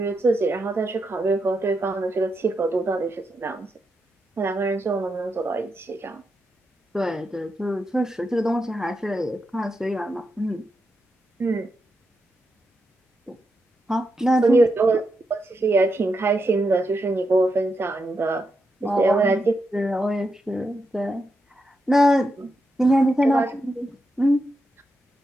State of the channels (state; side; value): normal; both; correlation 0.85